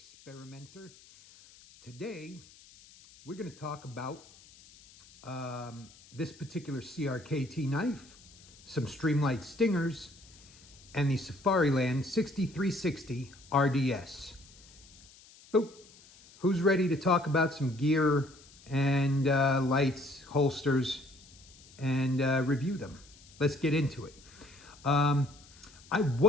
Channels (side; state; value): left; noise; hiss, 23 dB below the sound